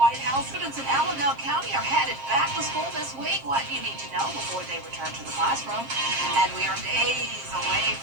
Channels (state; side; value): late; left; 7.5 ms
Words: House. Students in Allendale County are headed back to school this week. What do you need to know before they return to the classroom? And we are days away